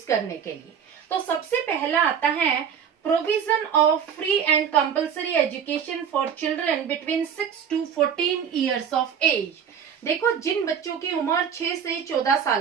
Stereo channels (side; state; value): left; quieter; 7.8 dB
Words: करने के लिए। तो सबसे पहला आता है provision of free and compulsory education for children between 6 to 14 years of age. देखो, जिन बच्चों की उम्र 6 से 14